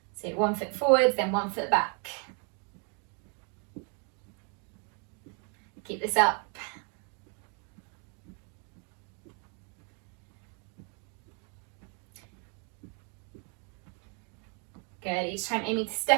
So 1 foot forwards, then 1 foot back. Keep this up. Good, each time aiming to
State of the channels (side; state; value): left; quieter; 38.0 dB